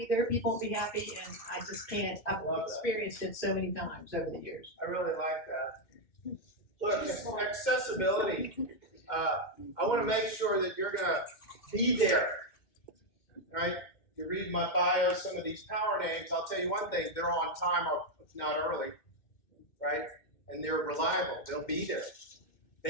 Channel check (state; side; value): late; right; 2.1 ms